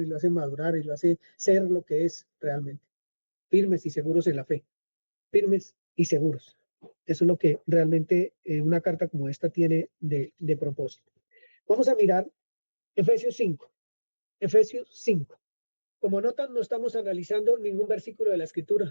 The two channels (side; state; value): both; inverted; correlation -1.00